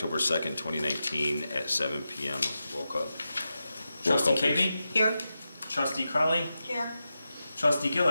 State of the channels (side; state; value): both; inverted; correlation -0.90